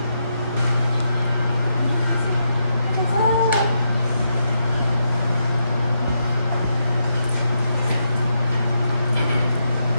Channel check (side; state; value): both; inverted; correlation -0.82